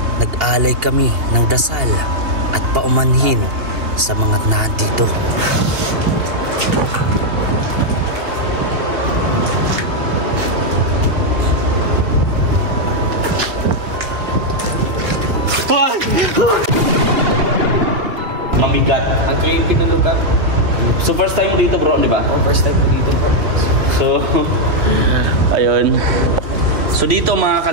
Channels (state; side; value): late; left; 2.8 ms